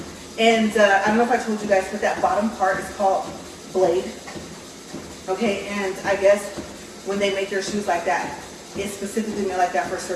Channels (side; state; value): both; identical; correlation 1.00